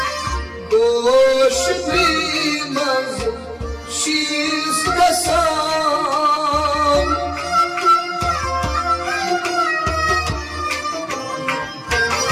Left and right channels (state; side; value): identical; both; correlation 1.00